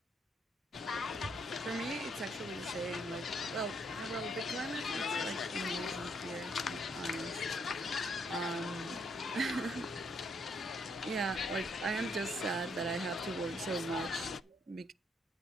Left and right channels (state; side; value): normal; both; correlation 0.71